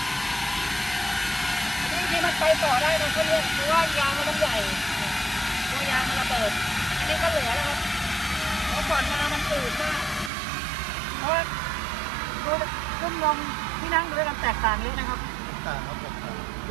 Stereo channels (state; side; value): drops out; left; at 10.3 s